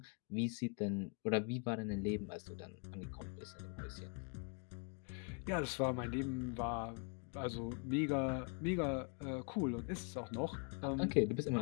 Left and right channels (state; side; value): quieter; right; 36.7 dB